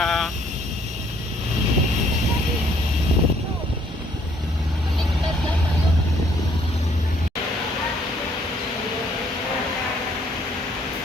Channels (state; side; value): normal; both; correlation 0.64